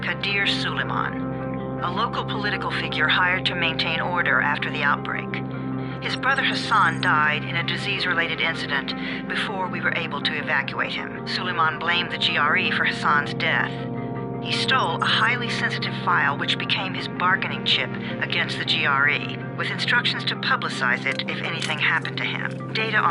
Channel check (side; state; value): both; identical; correlation 1.00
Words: Kadir Suleiman, a local political figure hired to maintain order after the outbreak. His brother Hassan died in a disease-related incident before we were able to evacuate him. Suleiman blamed the GRE for Hassan's death. He stole a highly sensitive file which became his bargaining chip against the GRE, with instructions to publicize it if anything happened to him. Data